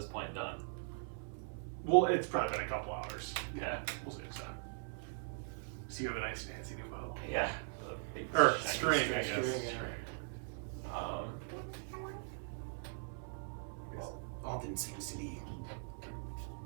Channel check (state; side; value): silent; left; 51 dB below the other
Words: point done? Well, it's probably been a couple hours. Yeah. We'll say so. So you have a nice fancy new bow. Yeah. Or string, I guess. String, yeah. Well, Alden seems to be